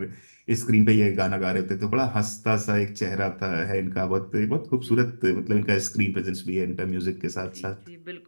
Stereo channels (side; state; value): both; inverted; correlation -1.00